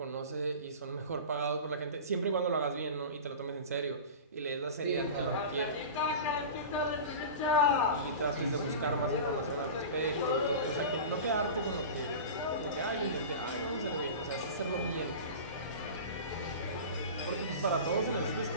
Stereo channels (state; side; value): inverted; both; correlation -0.32